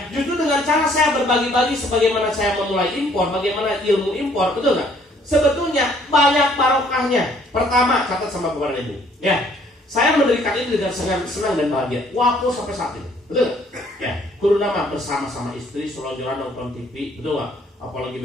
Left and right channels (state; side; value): normal; both; correlation 0.62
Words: justru dengan cara saya berbagi-bagi sebagaimana saya memulai impor, bagaimana ilmu impor, betul nggak? Sebetulnya banyak barokahnya. Pertama, catat sama Bapak dan Ibu. Ya, saya mendirikan ini dengan senang dan bahagia. Waktu sampai saat ini, betul nggak? Ya, kudu nama bersama-sama istri, selonjoran nonton TV, betul nggak? Apalagi